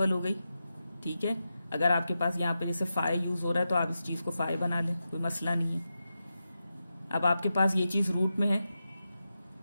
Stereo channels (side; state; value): both; inverted; correlation -0.90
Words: हो गई। ठीक है, अगर आपके पास यहाँ पे जैसे 5 यूज हो रहा है तो आप इस चीज़ को 5 बना लें, कोई मसला नहीं है। अब आपके पास ये चीज़ रूट में है